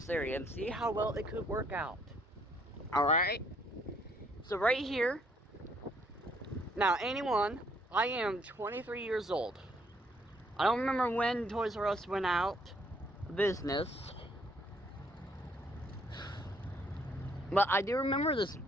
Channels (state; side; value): normal; both; correlation 0.67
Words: area and see how well it could work out. Alright? So right here, now I am 23 years old. I don't remember when TOYRUS went out of business, but I do remember this